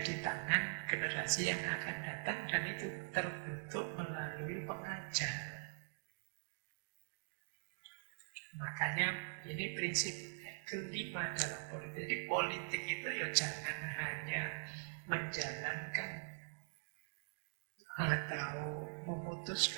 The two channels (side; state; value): left; silent; digital silence